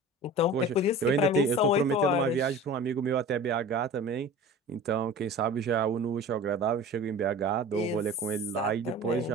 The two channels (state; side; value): normal; both; correlation 0.38